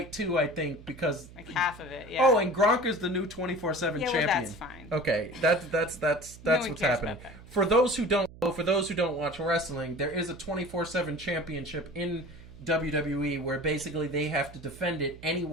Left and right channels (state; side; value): noise; right; hum, 18 dB below the sound